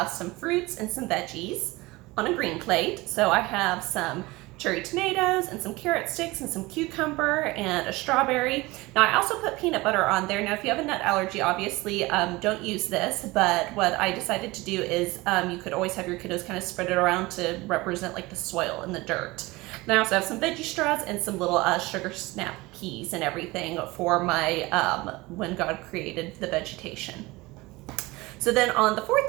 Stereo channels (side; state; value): left; quieter; 21.6 dB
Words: some fruits and some veggies on a green plate. So I have some cherry tomatoes and some carrot sticks and some cucumber and a strawberry. Now I also put peanut butter on there. Now if you have a nut allergy, obviously don't use this, but what I decided to do is you could always have your kiddos kind of spread it around to represent like the soil and the dirt. Then I also have some veggie straws and some little sugar snap peas and everything for my when God created the vegetation. So then on the